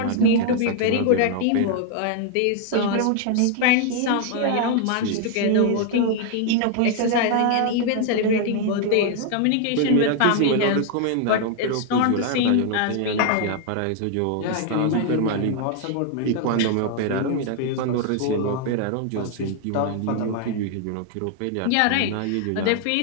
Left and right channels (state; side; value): different; both; correlation 0.00